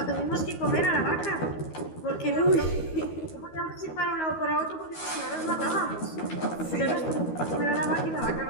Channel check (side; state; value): right; late; 12 ms